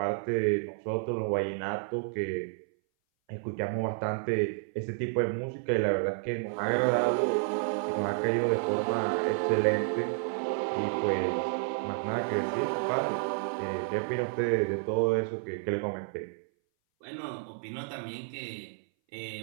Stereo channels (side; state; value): left; silent; 57 dB below the other